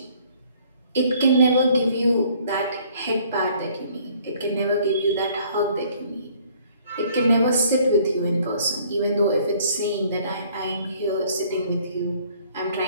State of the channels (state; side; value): inverted; both; correlation -0.59